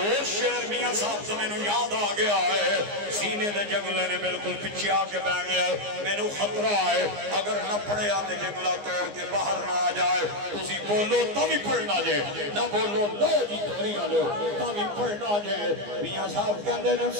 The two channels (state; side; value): late; left; 15 ms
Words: شعر میاں صاحب سے میں نے یاد آ گیا ہے سینے دے جنگلے نے بالکل پیچھے آ کے بہ گیا میں نے خطرہ ہے اگر نہ پڑے آتے جنگلہ توڑ کے باہر نہ آ جائے تسی بولو تمی پڑھنا جائے نہ بولو لو جی توری آلو تمی پڑھنا جائے میاں صاحب کہندے نے